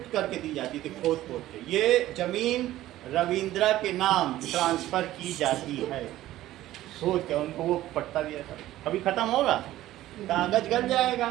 करके दी जाती थी, खोद खोद के। ये जमीन रविंद्रा के नाम ट्रांसफर की जाती है, सोच के उनको वो पट्टा दिया था। अभी खत्म होगा, कागज गल जाएगा,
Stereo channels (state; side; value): quieter; left; 14.8 dB